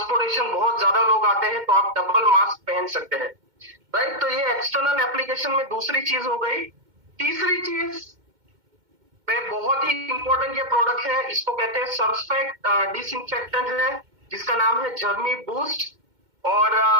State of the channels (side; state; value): left; late; 2.1 ms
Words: बहुत ज्यादा लोग आते हैं, तो आप डबल मास्क पहन सकते हैं, राइट। तो ये एक्सटर्नल एप्लीकेशन में दूसरी चीज हो गई। तीसरी चीज में बहुत ही इंपॉर्टेंट ये प्रोडक्ट है, इसको कहते हैं सरफेक्ट डिसइंफेक्टेंट है, जिसका नाम है जर्मी बूस्ट। और